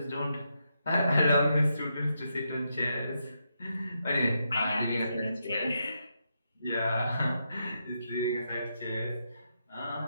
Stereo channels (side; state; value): both; inverted; correlation -0.82